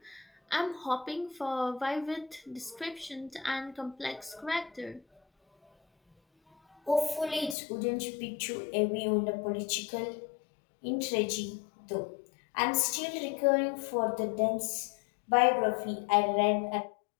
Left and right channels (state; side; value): drops out; right; at 7.6 s